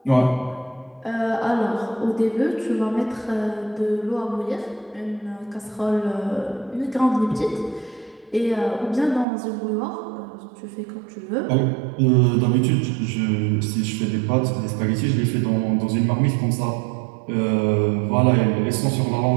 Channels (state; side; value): drops out; left; at 9.2 s